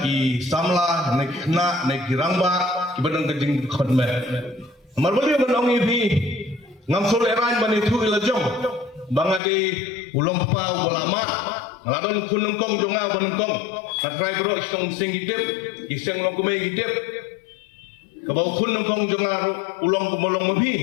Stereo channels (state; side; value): drops out; right; at 9.4 s